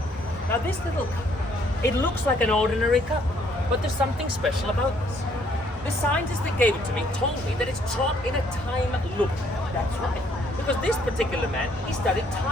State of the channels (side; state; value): both; normal; correlation 0.65